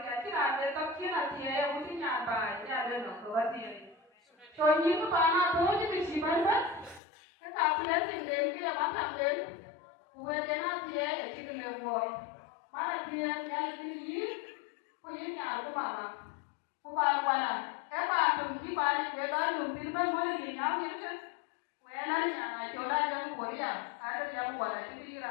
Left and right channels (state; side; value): drops out; right; at 7.0 s